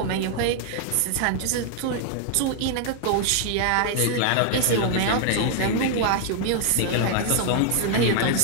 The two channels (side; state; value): both; different; correlation 0.00